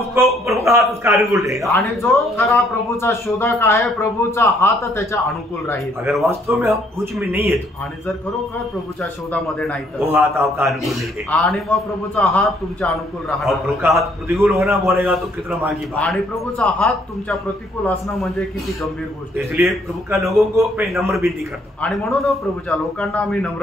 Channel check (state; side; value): normal; both; correlation 0.66